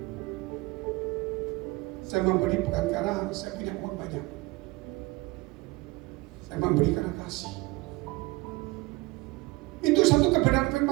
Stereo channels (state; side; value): quieter; left; 22.7 dB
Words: Saya memberi bukan karena saya punya uang banyak. Saya memberi karena kasih. Itu satu kebenaran